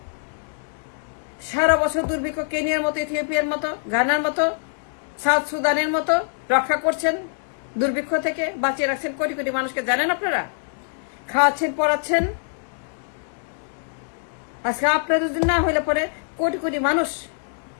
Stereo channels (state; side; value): silent; right; digital silence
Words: সারা বছর দুর্ভিক্ষ, কেনিয়ার মতো, ইথিওপিয়ার মতো, গানার মতো, সাউথ সুদানের মতো রক্ষা করছেন, দুর্ভিক্ষ থেকে বাঁচিয়ে রাখছেন কোটি কোটি মানুষকে। জানেন আপনারা, খাওয়াচ্ছেন, পড়াচ্ছেন। আজকে আপনাদের যদি না হইলে পরে কোটি কোটি মানুষ